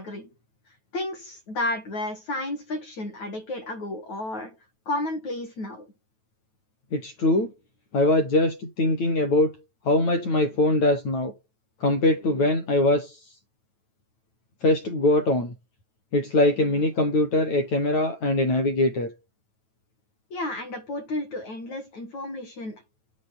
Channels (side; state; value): right; late; 9.2 ms